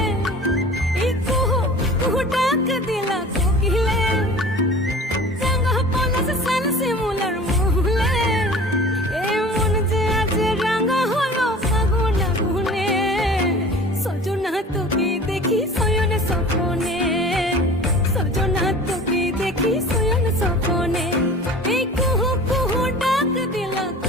এই কুহু কুহু ডাক দিলা চকিলে রাঙা পলাশ সাল সে মুলার মুহলে এ মন যে আজ রাঙা হলো ফাগুন আগুনে সজনা তোকে দেখি শয়ন স্বপ্নে সজনা তোকে দেখি শয়ন স্বপ্নে এই কুহু কুহু ডাক দিলা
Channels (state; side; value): normal; both; correlation 0.42